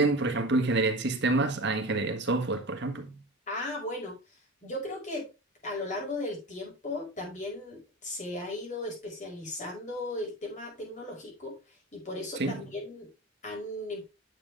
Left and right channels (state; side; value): normal; both; correlation 0.30